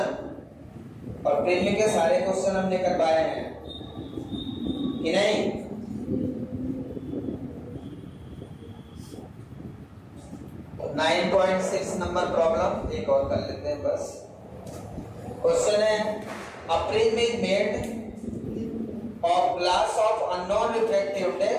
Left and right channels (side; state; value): both; identical; correlation 1.00